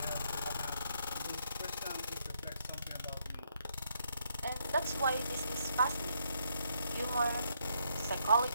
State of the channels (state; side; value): inverted; both; correlation -0.74